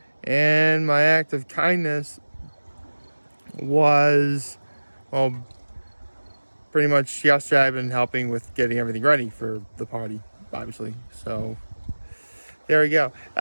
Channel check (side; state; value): both; inverted; correlation -1.00